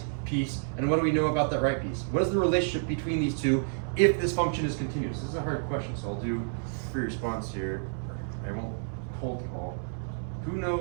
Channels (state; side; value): silent; left; digital silence